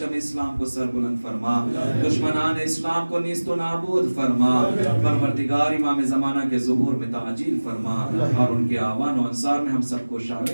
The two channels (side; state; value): both; inverted; correlation -1.00